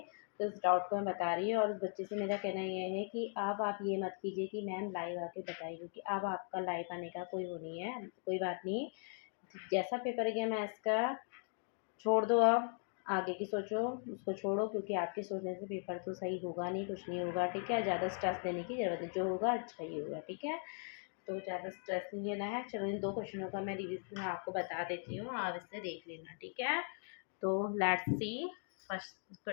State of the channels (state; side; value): silent; right; 52 dB below the other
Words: तो इस डाउट को मैं बता रही हूँ और उस बच्चे से मेरा कहना ये है कि अब आप ये मत कीजिए कि मैम लाइव आके बताइए, क्योंकि अब आपका लाइव आने का कोई वो नहीं है। कोई बात नहीं, जैसा पेपर गया मैथ्स का छोड़ दो, आप आगे की सोचो, उसको छोड़ो, क्योंकि आपके सोचने से पेपर तो सही होगा नहीं, कुछ नहीं होगा। ठीक है, ज़्यादा स्ट्रेस लेने की ज़रूरत नहीं, जो होगा अच्छा ही होगा। ठीक है, तो ज़्यादा स्ट्रेस नहीं लेना है। चलो, इन 2 क्वेश्चनों का मैं रिवीजन आपको बता देती हूँ, आप इससे देख लेना। ठीक है, तो लेट्स सी फर्स्ट